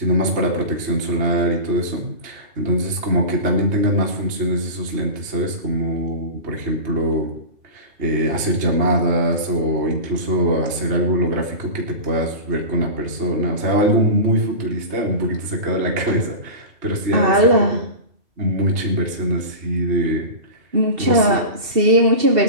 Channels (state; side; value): late; left; 2.7 ms